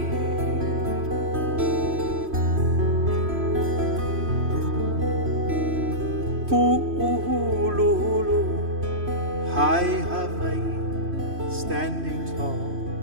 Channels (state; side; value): late; left; 3.1 ms